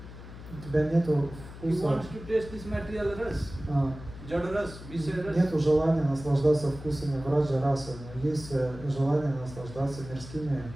У тебя нету He вкуса, wants to taste this material ras, Jadaras, Visharas. нету желания наслаждаться вкусами Враджа расы, но есть желание наслаждаться мирскими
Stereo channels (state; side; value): noise; left; hum, 14 dB below the sound